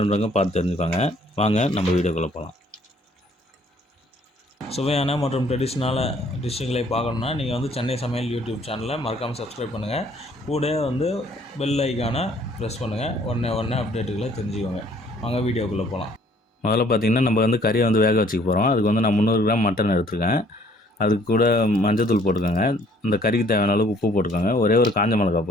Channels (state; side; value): normal; both; correlation 0.60